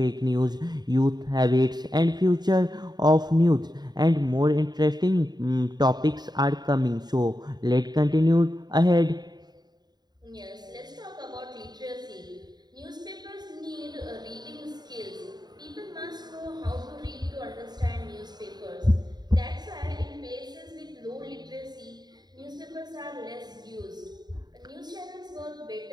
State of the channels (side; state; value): left; late; 0.20 ms